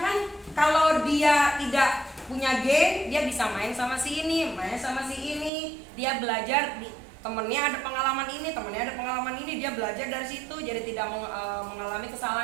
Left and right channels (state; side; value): drops out; left; at 5.5 s